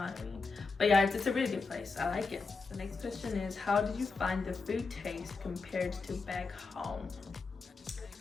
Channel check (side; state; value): right; quieter; 4.3 dB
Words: what I mean? But yeah, it's a really good place. I like it. The next question is, how did you find the food taste compared to back home?